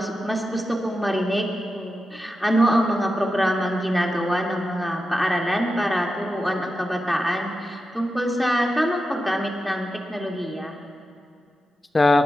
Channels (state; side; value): normal; both; correlation 0.90